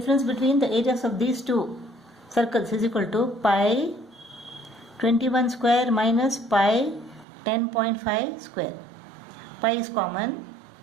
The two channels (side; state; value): left; drops out; at 7.2 s